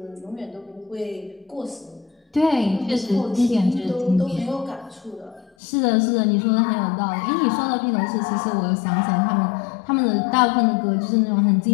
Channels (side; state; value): right; drops out; at 5.5 s